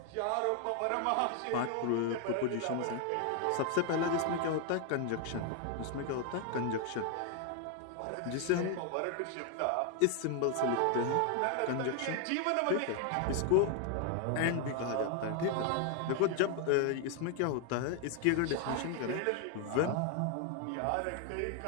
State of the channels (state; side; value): different; both; correlation 0.01